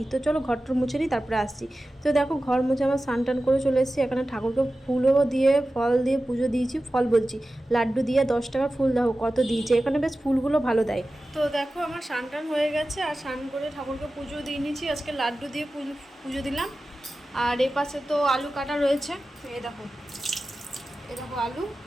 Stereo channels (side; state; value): both; normal; correlation 0.95